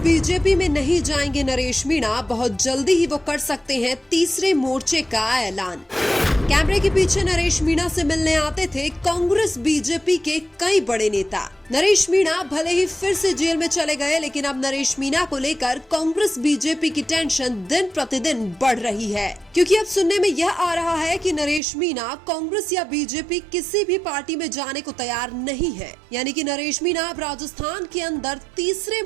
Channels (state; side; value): drops out; left; at 21.6 s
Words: में नहीं जाएंगे नरेश मीणा, बहुत जल्दी ही वो कर सकते हैं तीसरे मोर्चे का ऐलान। कैमरे के पीछे नरेश मीणा से मिलने आते थे कांग्रेस बीजेपी के कई बड़े नेता। नरेश मीणा भले ही फिर से जेल में चले गए, लेकिन अब नरेश मीणा को लेकर कांग्रेस बीजेपी की टेंशन दिन प्रतिदिन बढ़ रही है, क्योंकि अब सुनने में यह आ रहा है कि नरेश मीणा कांग्रेस या बीजेपी किसी भी पार्टी में जाने को तैयार नहीं है। यानी कि नरेश मीणा अब राजस्थान के अंदर तीसरे